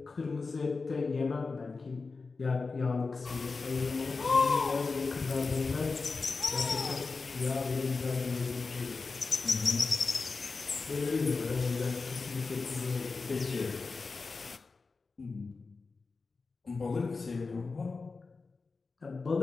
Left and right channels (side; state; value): right; quieter; 4.2 dB